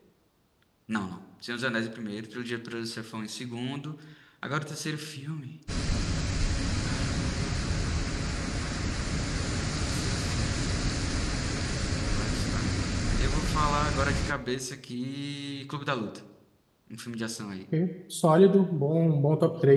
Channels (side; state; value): both; identical; correlation 1.00